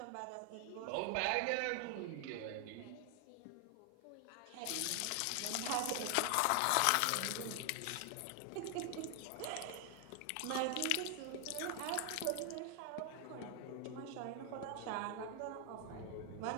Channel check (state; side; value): different; both; correlation 0.00